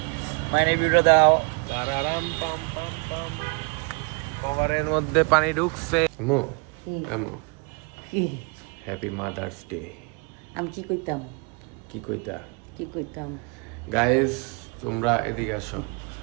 মাইনে ভিডিও দাও তারারাম পাম পাম পাম। কভারের মধ্যে পানি ঢুকছে। আমু আমু হ্যাপি মাদার্স ডে। আমি কি কইতাম কি কইতা? কি কইতাম গাইস তোমরা এদিকে আসো।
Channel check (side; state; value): left; quieter; 32.4 dB